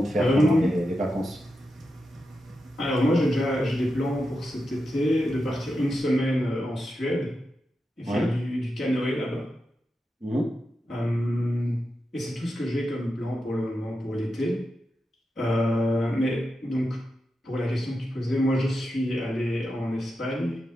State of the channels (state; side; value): normal; both; correlation 0.88